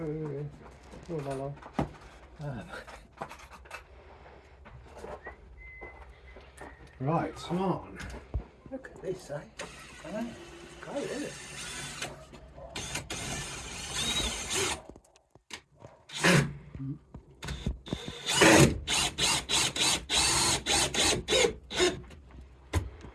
hello. Right, on. Look at this, eh? I know. Great, isn't it?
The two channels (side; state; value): both; identical; correlation 1.00